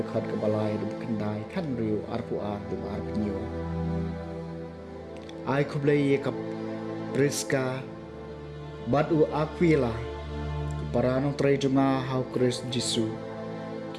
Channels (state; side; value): identical; both; correlation 1.00